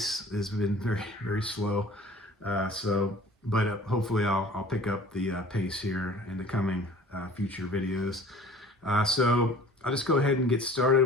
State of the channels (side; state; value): both; normal; correlation 0.47